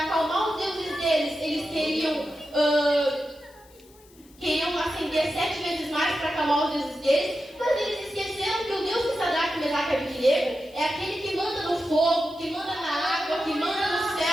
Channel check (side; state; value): left; noise; hiss, 27 dB below the sound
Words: acalmar os deuses deles. Eles queriam acender 7 vezes mais para acalmar os deuses deles, mas eles esqueceram que o Deus de Sadraque, Mesaque e Abednego é aquele que manda no fogo, que manda na água, que manda no